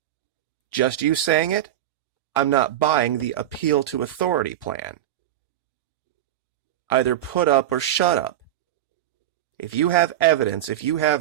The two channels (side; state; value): left; quieter; 12.3 dB